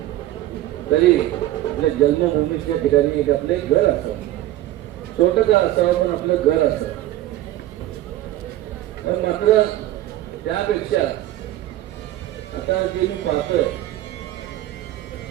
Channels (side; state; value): left; quieter; 14.4 dB